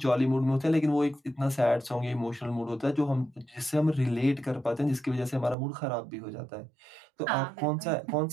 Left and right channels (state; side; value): drops out; left; at 5.6 s